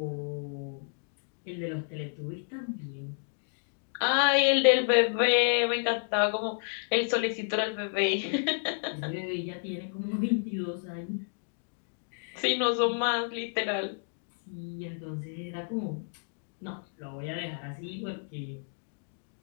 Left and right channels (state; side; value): silent; right; digital silence